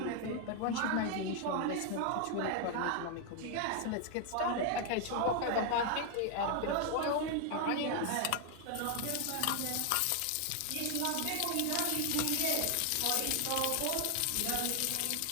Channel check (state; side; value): different; both; correlation 0.00